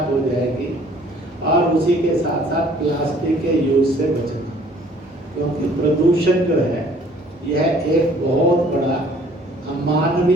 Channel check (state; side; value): normal; both; correlation 0.56